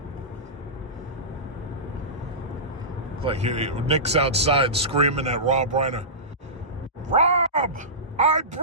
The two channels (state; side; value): normal; both; correlation -0.20